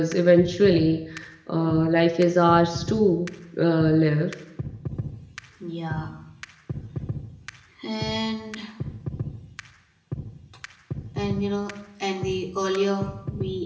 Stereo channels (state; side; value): identical; both; correlation 1.00